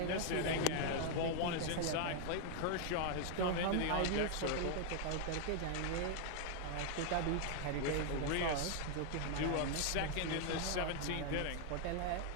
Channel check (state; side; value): different; both; correlation 0.00